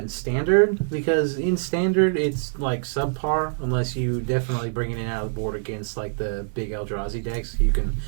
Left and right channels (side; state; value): left; silent; digital silence